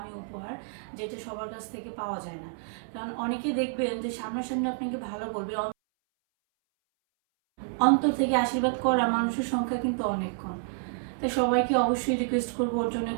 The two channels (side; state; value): left; silent; 59 dB below the other